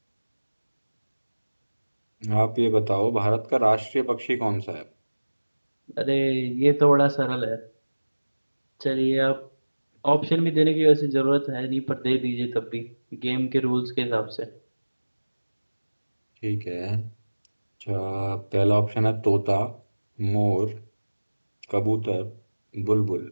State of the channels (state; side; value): inverted; both; correlation -1.00